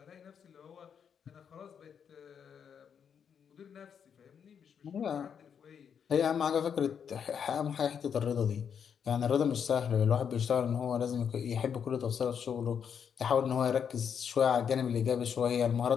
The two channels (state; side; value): quieter; right; 7.5 dB